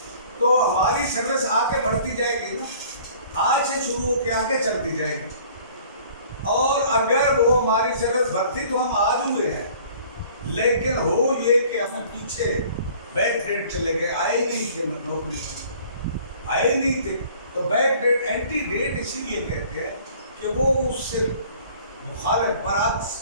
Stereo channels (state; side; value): inverted; both; correlation -0.52